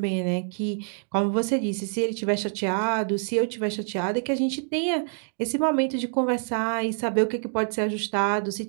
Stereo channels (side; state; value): left; silent; 59 dB below the other